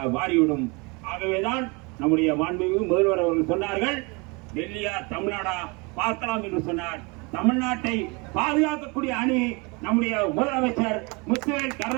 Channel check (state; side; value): quieter; left; 28.6 dB